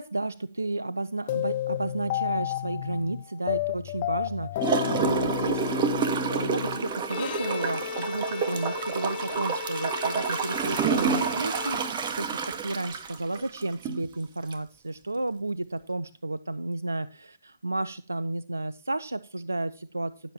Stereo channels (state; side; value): inverted; both; correlation -0.52